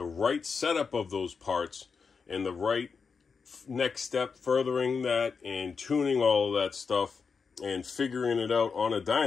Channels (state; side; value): quieter; right; 5.4 dB